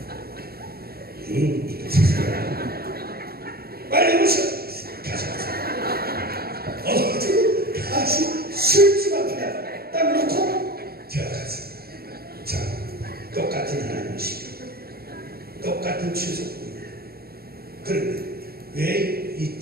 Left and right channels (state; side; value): late; left; 0.45 ms